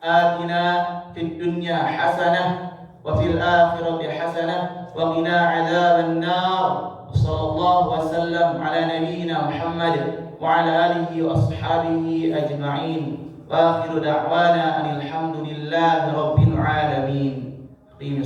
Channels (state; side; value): identical; both; correlation 1.00